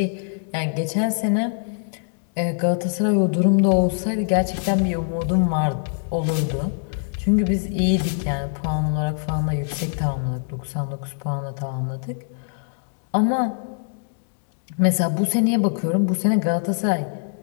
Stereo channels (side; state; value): right; silent; digital silence